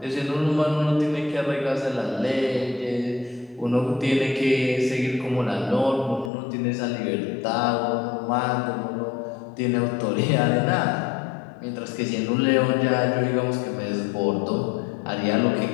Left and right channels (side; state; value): right; drops out; at 6.3 s